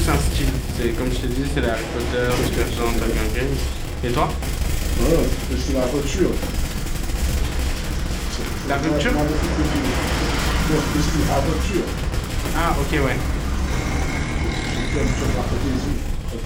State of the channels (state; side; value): identical; both; correlation 1.00